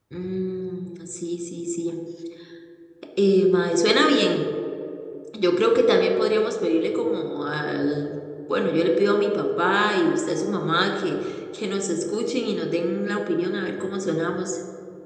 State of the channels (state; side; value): identical; both; correlation 1.00